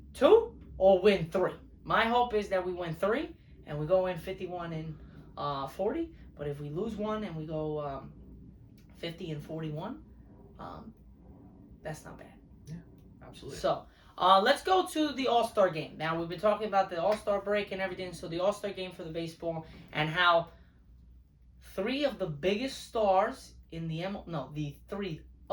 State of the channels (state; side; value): identical; both; correlation 1.00